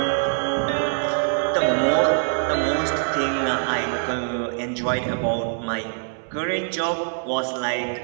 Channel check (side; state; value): left; silent; 59 dB below the other